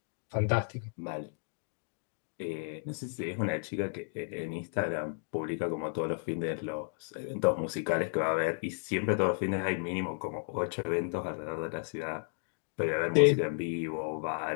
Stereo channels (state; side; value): silent; right; digital silence